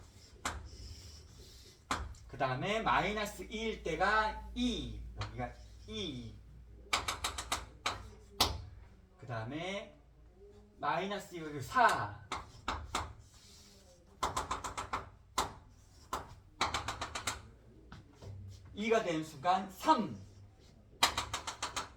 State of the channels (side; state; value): both; identical; correlation 1.00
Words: 그 다음에 마이너스 2일 때가 2. 여기가 2. 그 다음에 마이너스 2, 여기 4. 가 되는 순간 3.